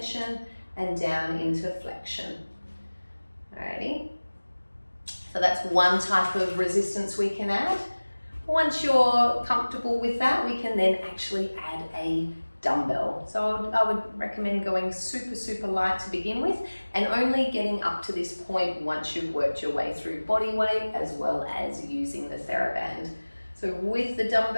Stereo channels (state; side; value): inverted; both; correlation -1.00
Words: and down into flexion. Alrighty. So that's one type of resistance we can add. Once you're comfortable with that, we can then actually add a dumbbell. So I would recommend going super, super light to begin with and only getting up to this point once you've worked your way through body weight as well as using the TheraBand. So with the